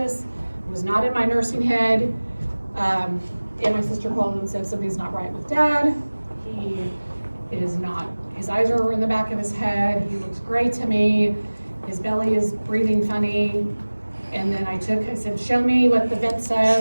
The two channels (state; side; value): inverted; both; correlation -1.00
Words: was not in my nursing head, and my sister called and said something's not right with dad. He is not, his eyes are in the back of his head, he looks gray to me, his belly is breathing funny. And then I said, show me what the vent